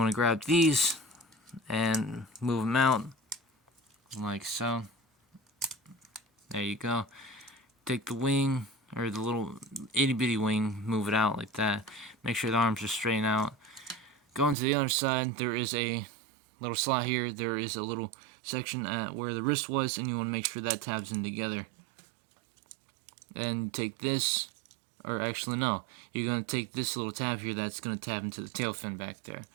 to grab these and move them out like so. There you go. Take the wing, or the little itty bitty wing, move it out like that. Make sure the arms are straight out. Going to the other side, there is a little slot here. There is a little section at where the wrist was, and you want to make sure that tabs in together. Then take this, or actually no, you're going to take this little tab here that's going to tab into the tail fin back there.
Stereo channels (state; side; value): drops out; left; at 14.6 s